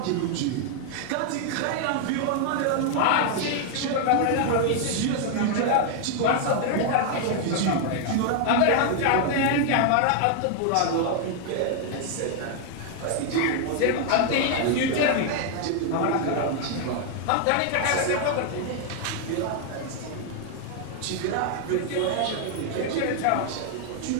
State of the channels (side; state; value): both; different; correlation 0.00